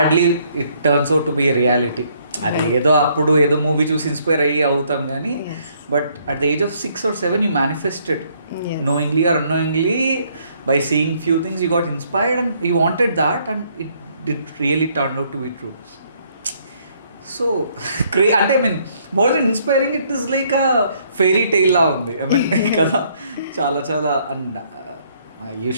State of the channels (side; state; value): both; inverted; correlation -0.67